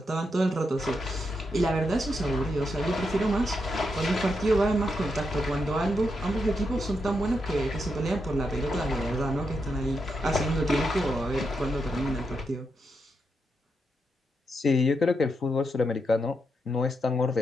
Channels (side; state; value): both; normal; correlation 0.83